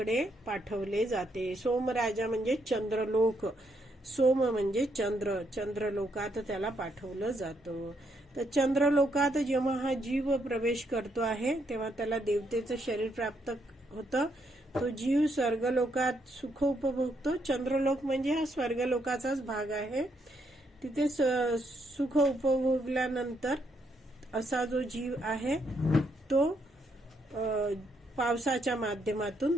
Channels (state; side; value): normal; both; correlation 0.75